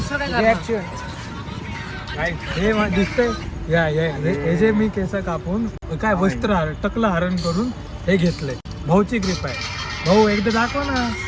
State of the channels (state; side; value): identical; both; correlation 1.00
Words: रिएक्शन काय हे दिसतंय या हे जे मी केस कापून काय वस्त्र टकलं हरण करून हे घेतलंय भाऊची ग्रीप आहे भाऊ एकदा दाखव ना